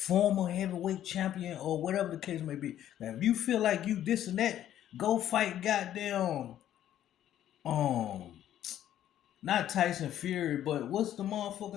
heavyweight champion, or whatever the case may be? Now, if you feel like you this and that, go fight goddamn um not Tyson Fury, but what's the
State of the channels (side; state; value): right; quieter; 11.6 dB